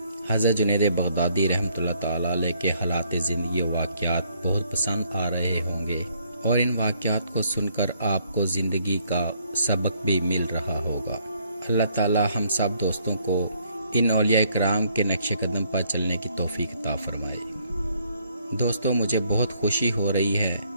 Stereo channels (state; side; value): inverted; both; correlation -0.67